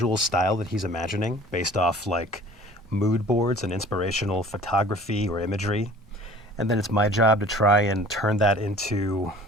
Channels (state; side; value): normal; both; correlation 0.48